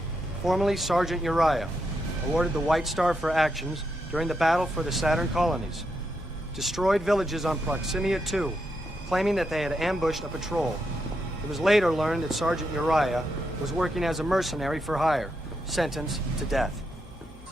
formerly Sergeant Uriah, awarded the White Star for actions during the battle for the Saturn colonies. Destroyed villages on Proximia 2, claiming that they had ambushed a patrol. It was later learned that Sergeant Uriah was working as a mercenary for hire, sentenced to death.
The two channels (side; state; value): both; normal; correlation 0.82